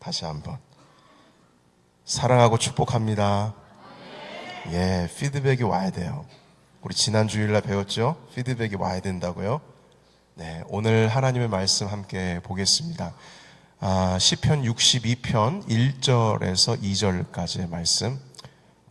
한번 사랑하고 축복합니다. 예, 피드백이 와야 돼요. 우리 지난 주일날 배웠죠? 피드백이 와야 된다고요. 네, 오늘 하나님의 말씀 함께 보겠습니다. 시편 62편 1절에서 2절까지의 말씀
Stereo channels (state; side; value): identical; both; correlation 1.00